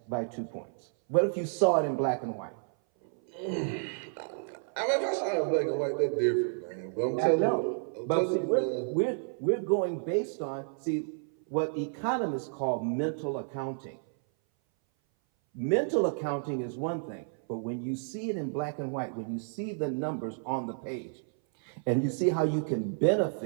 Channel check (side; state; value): left; silent; 57 dB below the other